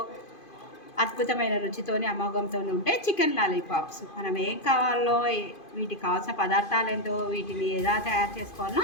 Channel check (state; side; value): late; right; 2.5 ms